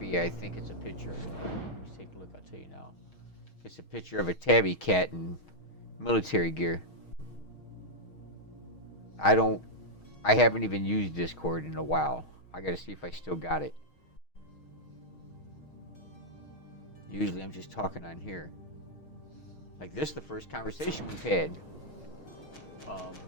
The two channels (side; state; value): right; late; 6.4 ms